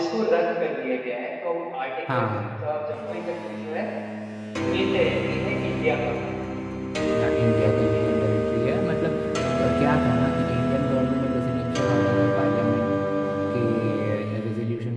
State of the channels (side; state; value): both; identical; correlation 1.00